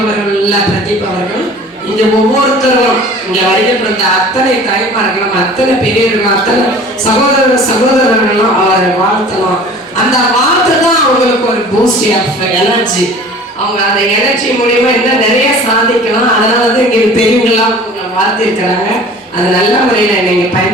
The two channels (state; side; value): normal; both; correlation 0.45